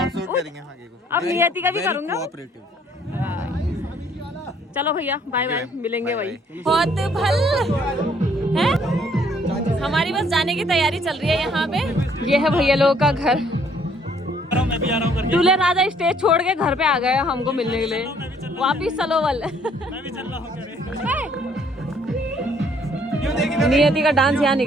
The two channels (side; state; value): both; normal; correlation 0.63